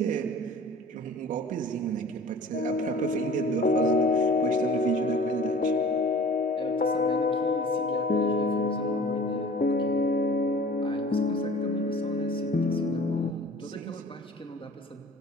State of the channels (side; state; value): both; normal; correlation 0.44